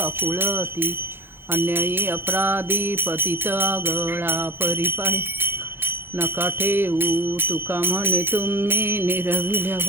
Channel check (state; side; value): late; left; 0.10 ms